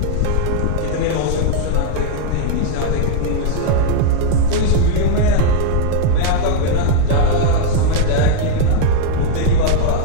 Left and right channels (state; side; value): different; both; correlation 0.00